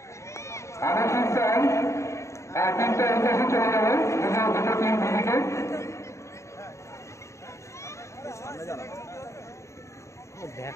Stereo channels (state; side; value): late; right; 0.14 ms